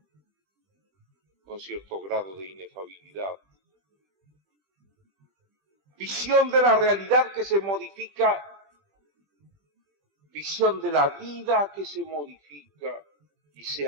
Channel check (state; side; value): late; left; 20 ms